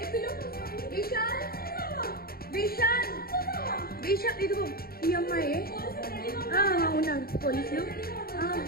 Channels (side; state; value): right; late; 0.44 ms